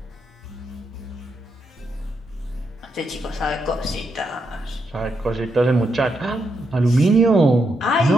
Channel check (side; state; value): both; normal; correlation 0.81